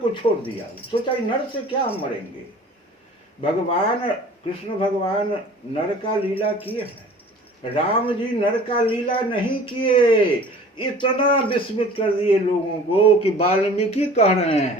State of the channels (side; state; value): both; normal; correlation 0.46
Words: छोड़ दिया। सोचा नर से क्या हम मरेंगे। भगवान कृष्ण भगवान नर का लीला किए हैं, राम जी नर का लीला नहीं किए। इतना विस्मित कर दिए लोगों को कि वाल्मीकि कह रहे